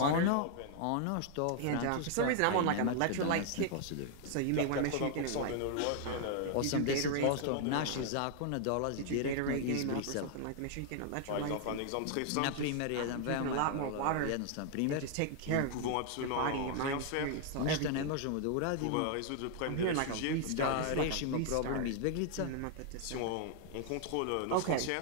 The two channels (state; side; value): different; both; correlation 0.00